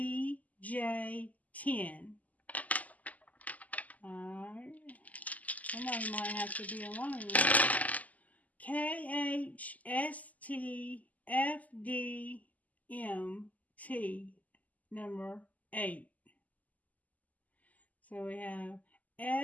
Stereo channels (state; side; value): late; right; 0.077 ms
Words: Alright. Somebody might have to be alone. KHSTFDMT, number 8. So we have